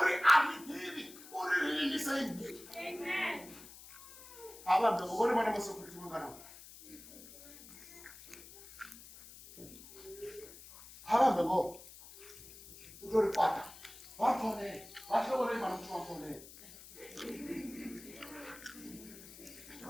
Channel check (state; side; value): noise; left; hiss, 17 dB below the sound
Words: aridivi uriririniseini avambe vone vana masokuriti manganawo avambe vo utoripata vafone vatorei vana kuti vafone